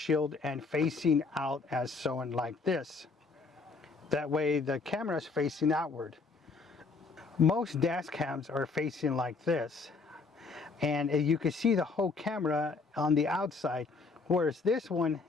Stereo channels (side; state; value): right; quieter; 4.3 dB